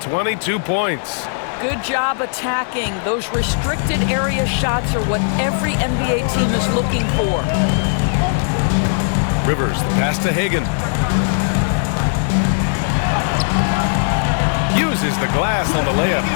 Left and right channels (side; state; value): right; silent; 67 dB below the other